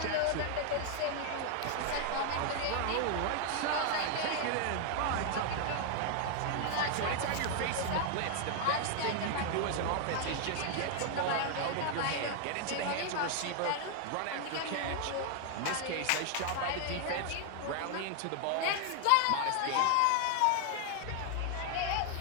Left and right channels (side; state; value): both; different; correlation 0.00